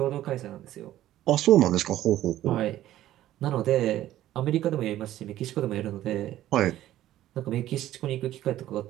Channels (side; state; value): left; quieter; 13.6 dB